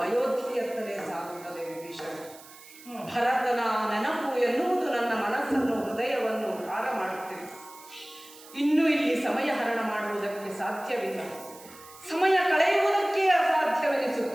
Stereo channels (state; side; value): noise; right; hiss, 20 dB below the sound